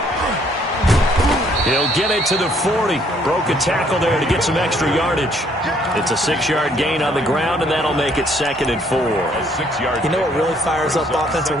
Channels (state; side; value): normal; both; correlation 0.65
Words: He'll get it to the 40. Broke a tackle there to get some extra yardage. It's a 6-yard gain on the ground, and that'll make it 2nd and 4. You know what really fires up offensive